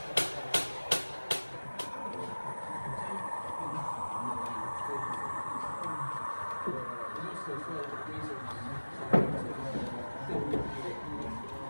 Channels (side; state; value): both; inverted; correlation -1.00